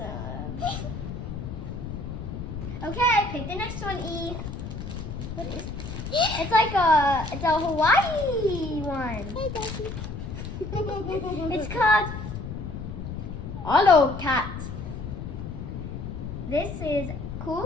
Okay, pick the next one, E. What is it? It's like it's a Hawaii one. Hey, Daddy. It's called Hollow Cat. This is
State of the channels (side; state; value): left; noise; rumble, 7 dB below the sound